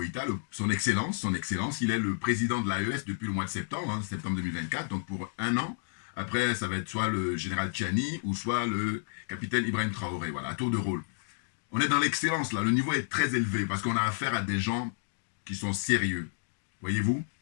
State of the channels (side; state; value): right; silent; digital silence